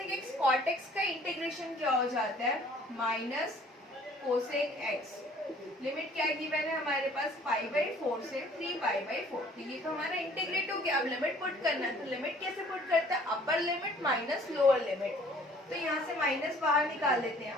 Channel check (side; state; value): both; normal; correlation 0.55